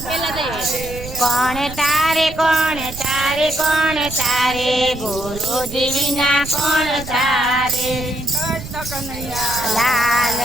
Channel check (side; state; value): right; noise; rumble, 12 dB below the sound